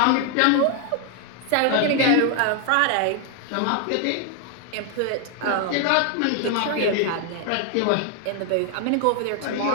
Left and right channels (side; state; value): both; different; correlation 0.00